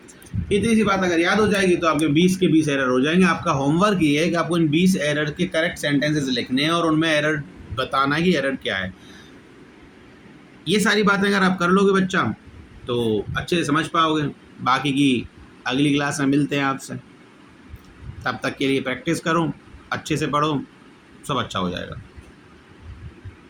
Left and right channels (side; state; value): both; identical; correlation 1.00